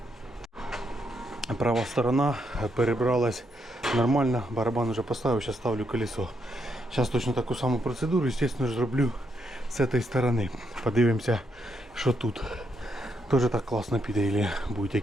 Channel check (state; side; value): normal; both; correlation 0.78